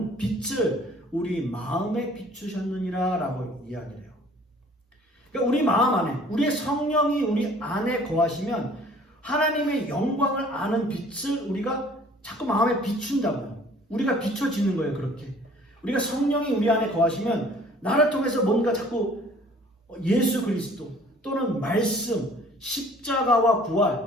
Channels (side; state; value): both; normal; correlation 0.53